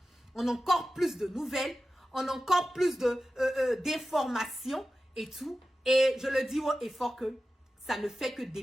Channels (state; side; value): normal; both; correlation 0.94